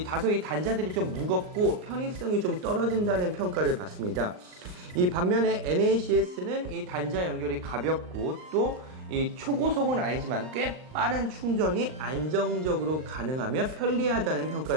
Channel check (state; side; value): late; left; 39 ms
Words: 다소 이 단자들이 좀 무겁고 편의성이 좀 떨어진다는 평가를 받습니다. 이 반면에 NACS는 이 단자 연결이 가볍고 또 이 초고속은 아니지만 꽤 빠른 충전이 안정적으로 가능하며 편리하다는